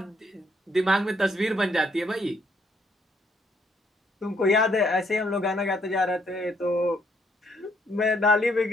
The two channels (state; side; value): normal; both; correlation 0.70